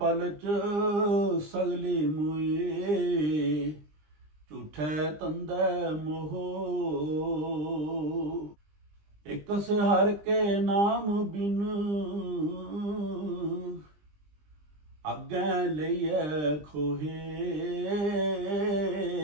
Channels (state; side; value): late; left; 20 ms